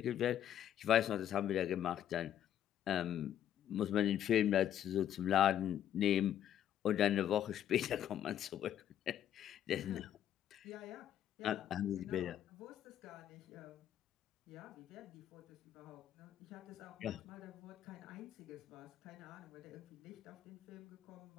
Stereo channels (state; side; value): quieter; right; 10.6 dB